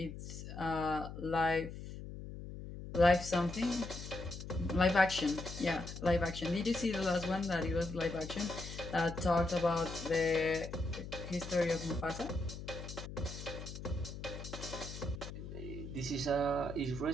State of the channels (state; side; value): noise; left; hum, 10 dB below the sound